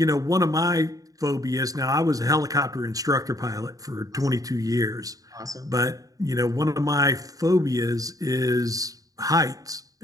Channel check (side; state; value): left; late; 0.17 ms